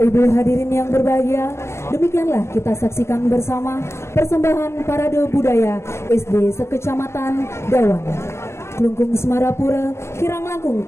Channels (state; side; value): late; right; 0.13 ms